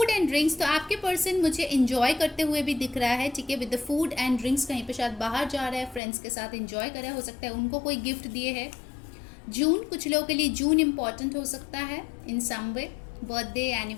and drinks, तो आपके पर्सन मुझे इंजॉय करते हुए भी दिख रहा है, ठीक है, with the food and drinks, कहीं पे शायद बाहर जा रहा है, फ्रेंड्स के साथ इंजॉय कर रहा है, हो सकता है उनको कोई गिफ्ट दिए है। जून, कुछ लोगों के लिए जून इम्पॉर्टेंट हो सकता है in some way, birthday,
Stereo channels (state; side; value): drops out; right; at 6.0 s